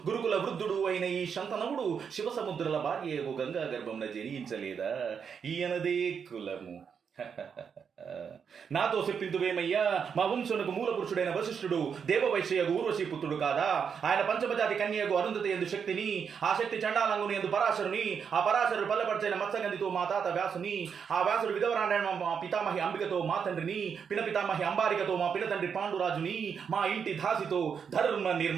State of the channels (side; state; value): left; quieter; 6.8 dB